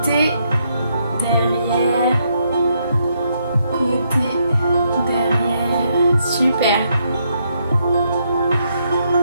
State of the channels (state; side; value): inverted; both; correlation -0.76